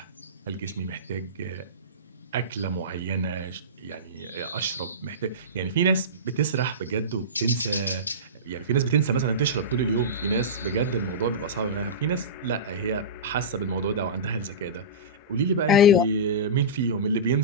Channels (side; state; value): both; normal; correlation -0.18